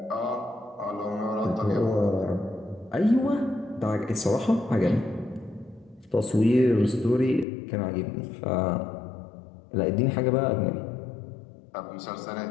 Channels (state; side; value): drops out; right; at 7.5 s